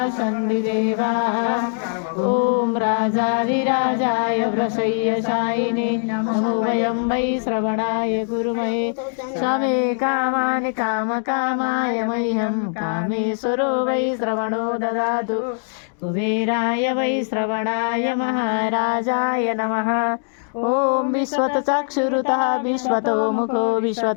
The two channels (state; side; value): silent; right; digital silence